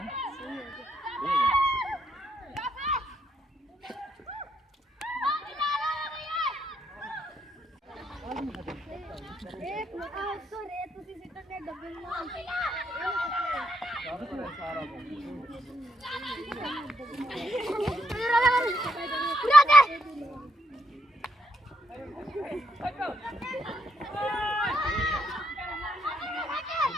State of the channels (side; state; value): both; normal; correlation 0.76